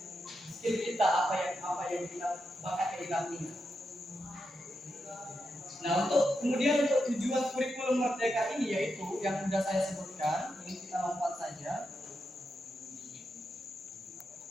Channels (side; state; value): both; normal; correlation 0.86